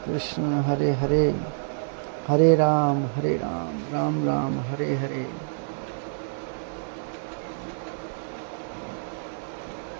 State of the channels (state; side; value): silent; left; digital silence